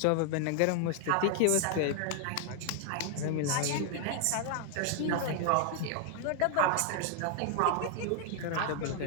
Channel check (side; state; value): both; different; correlation 0.00